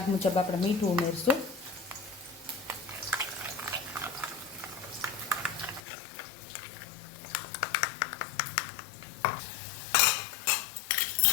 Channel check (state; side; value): drops out; right; at 5.8 s